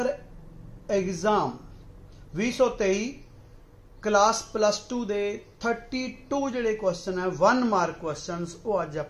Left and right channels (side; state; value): both; identical; correlation 1.00